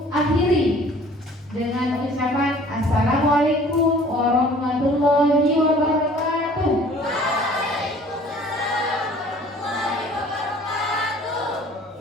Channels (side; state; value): both; normal; correlation 0.51